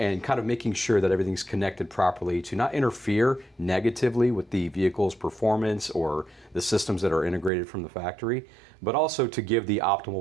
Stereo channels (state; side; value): drops out; left; at 7.5 s